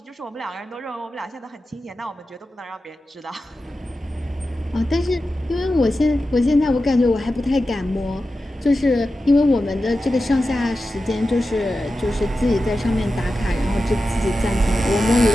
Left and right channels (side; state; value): both; normal; correlation 0.92